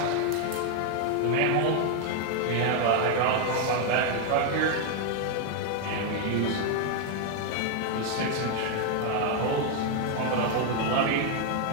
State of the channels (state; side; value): different; both; correlation 0.01